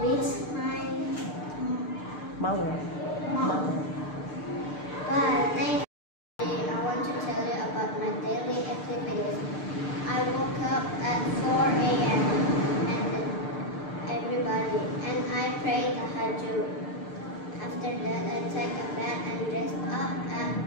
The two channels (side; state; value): right; late; 6.7 ms